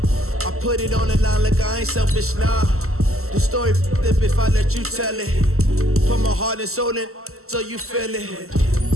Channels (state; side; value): late; left; 0.63 ms